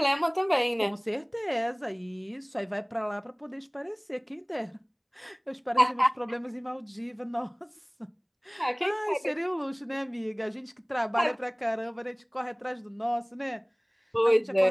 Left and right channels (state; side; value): identical; both; correlation 1.00